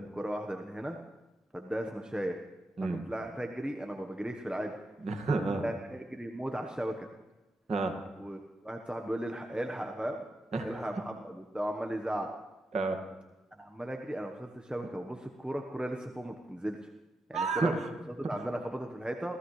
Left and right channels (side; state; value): both; normal; correlation 0.87